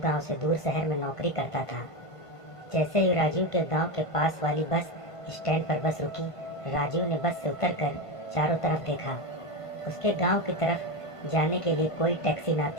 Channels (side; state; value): right; late; 1.5 ms